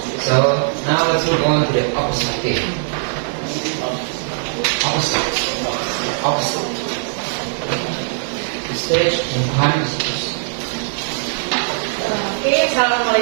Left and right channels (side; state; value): left; silent; 61 dB below the other